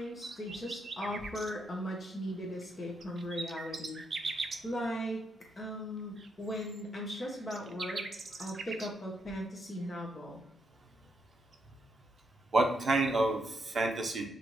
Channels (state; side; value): normal; both; correlation 0.79